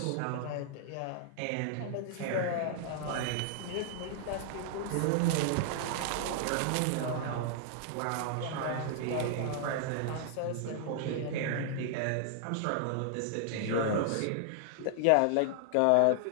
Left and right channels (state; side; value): different; both; correlation -0.01